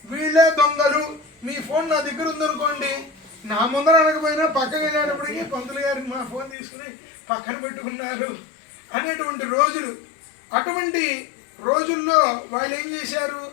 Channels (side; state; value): right; drops out; at 6.6 s